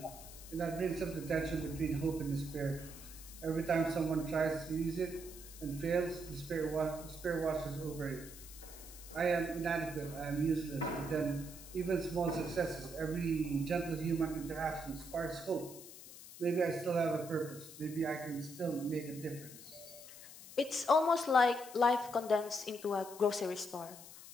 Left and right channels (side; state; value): left; noise; hiss, 15 dB below the sound